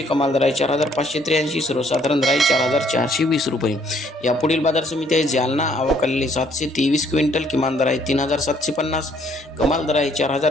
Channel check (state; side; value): normal; both; correlation 0.65